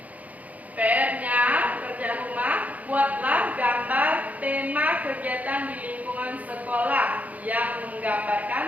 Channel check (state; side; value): late; left; 0.074 ms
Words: PR-nya pekerjaan rumah, buatlah gambar tema kegiatan di lingkungan sekolah yang